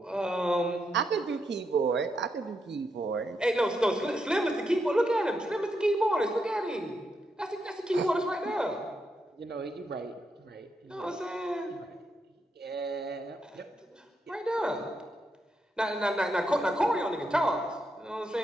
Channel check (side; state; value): both; normal; correlation 0.82